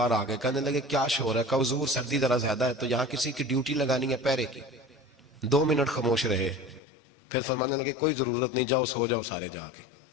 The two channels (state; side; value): drops out; right; at 6.8 s